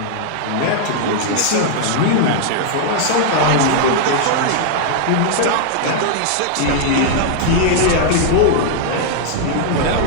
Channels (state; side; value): different; both; correlation -0.01